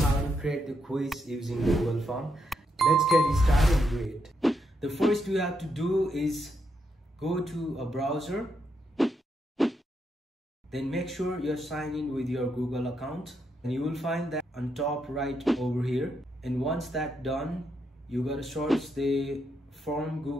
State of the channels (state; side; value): normal; both; correlation 0.80